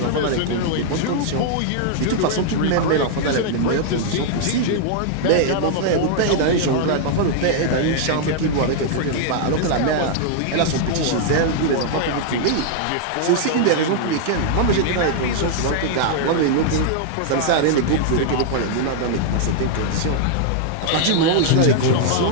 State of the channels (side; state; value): both; different; correlation -0.01